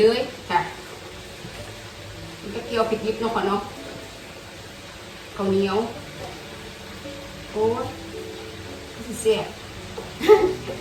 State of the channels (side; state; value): both; identical; correlation 1.00